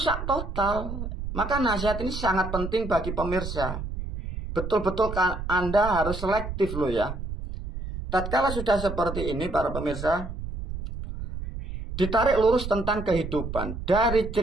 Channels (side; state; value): right; noise; rumble, 7 dB below the sound